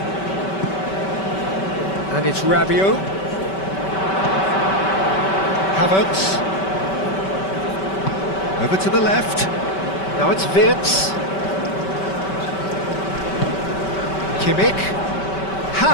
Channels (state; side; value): late; right; 5.2 ms